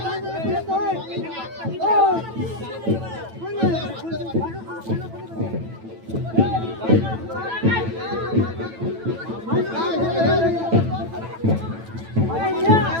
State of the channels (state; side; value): late; left; 9.0 ms